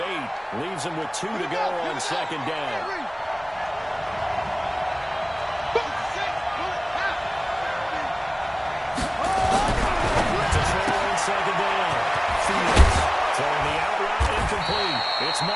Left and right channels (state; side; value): identical; both; correlation 1.00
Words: 8 leaves him with 2 to go on 2nd down. It's